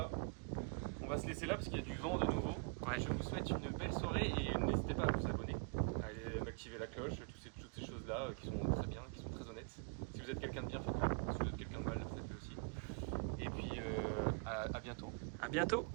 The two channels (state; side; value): quieter; left; 35.4 dB